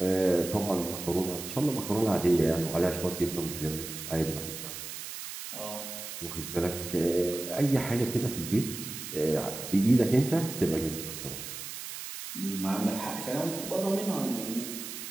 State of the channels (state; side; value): noise; right; hiss, 8 dB below the sound